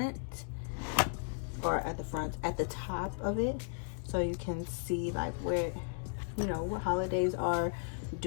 or at the top of it, so you can see like where, you know, what holidays are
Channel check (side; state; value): right; silent; digital silence